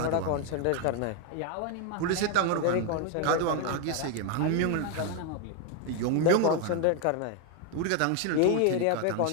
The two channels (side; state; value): both; different; correlation 0.01